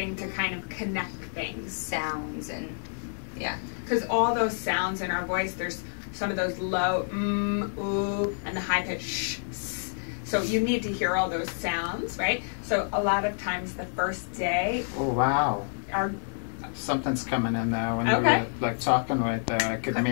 to kind of connect things. Sounds and, yeah. Because all those sounds in our voice, there's some of those low ooh, and the high pitch sh, s. So you need to hear all those sounds, right? So a lot of times the first day, Oh, wow. our Something's coming in there when you're like talking right there. I could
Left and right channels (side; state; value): right; silent; digital silence